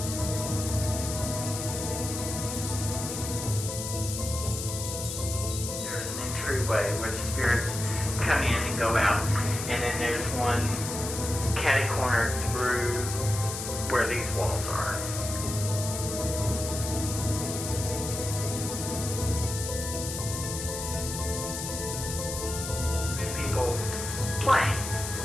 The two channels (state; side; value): noise; left; hiss, 6 dB below the sound